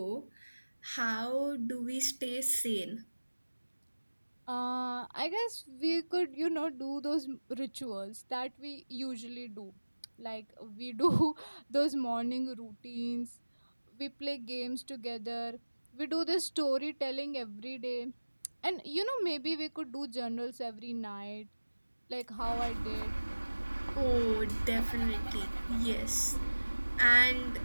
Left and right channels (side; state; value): both; inverted; correlation -1.00